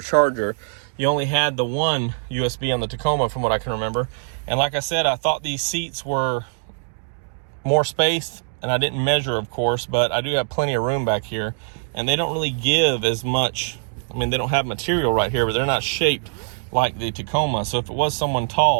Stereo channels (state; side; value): silent; left; 64 dB below the other